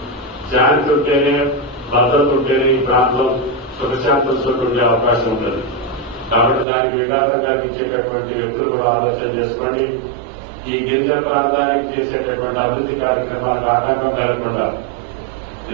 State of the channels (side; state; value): left; drops out; at 6.7 s